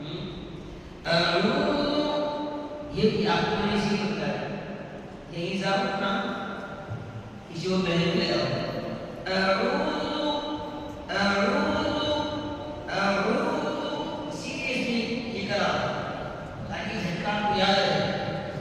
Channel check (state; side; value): identical; both; correlation 1.00